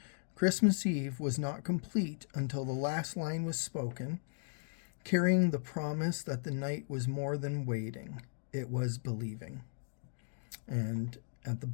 Christmas Eve was not complete until the last line was spoken, carrying the promise that the night was more than waiting, it was believing. And at the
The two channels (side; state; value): right; silent; digital silence